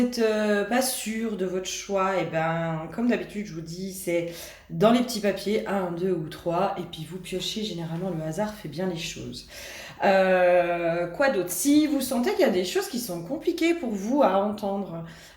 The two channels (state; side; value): identical; both; correlation 1.00